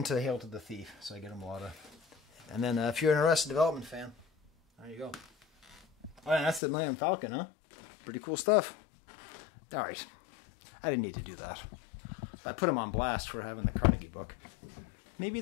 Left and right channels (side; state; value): right; drops out; at 6.6 s